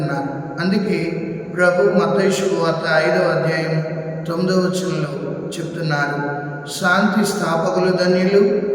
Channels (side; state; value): both; identical; correlation 1.00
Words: అందుకే ప్రభు మత్తయి శుభవార్త 5వ అధ్యాయం 9వ వచనంలో చెప్తున్నారు, శాంతి స్థాపకులు ధన్యులు,